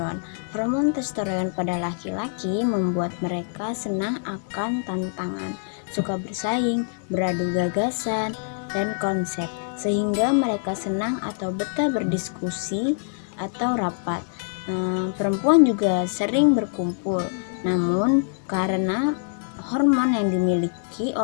Hormon testosteron pada laki-laki membuat mereka senang akan tantangan, suka bersaing, beradu gagasan, dan konsep, sehingga mereka senang atau betah berdiskusi atau rapat. Perempuan juga sering berkumpul, namun karena hormon yang dimiliki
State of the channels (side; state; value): right; silent; 62 dB below the other